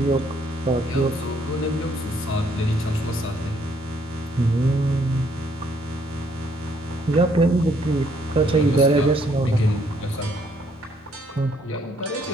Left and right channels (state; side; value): normal; both; correlation 0.68